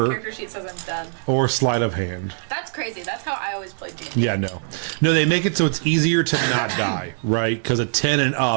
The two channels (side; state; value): left; silent; 64 dB below the other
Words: character sheet says I'm dead. sleight of hand. That's crazy. That's how I always played D&D. Yeah, no, they make it so it's easier to not die, right? Because a 10 and